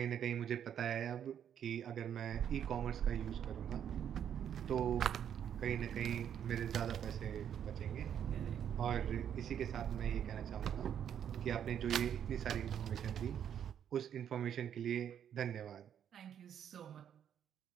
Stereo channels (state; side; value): quieter; left; 9.1 dB